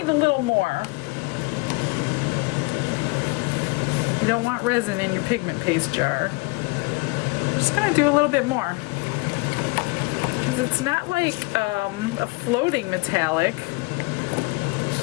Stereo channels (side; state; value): right; quieter; 27.2 dB